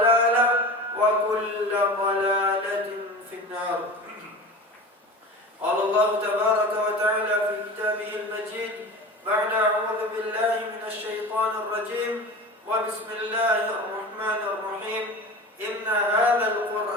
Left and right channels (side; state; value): both; normal; correlation 0.33